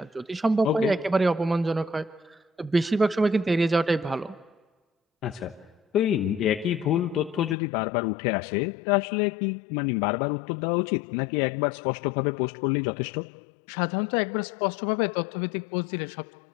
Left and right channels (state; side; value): drops out; right; at 7.6 s